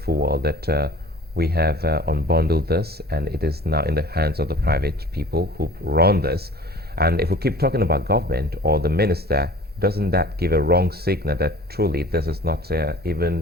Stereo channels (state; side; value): normal; both; correlation 0.45